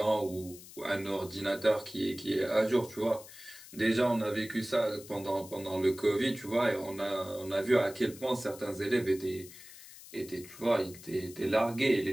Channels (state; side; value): noise; left; hiss, 17 dB below the sound